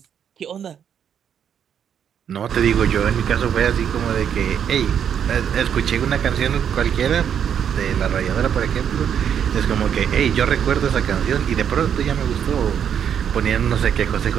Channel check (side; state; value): left; quieter; 8.5 dB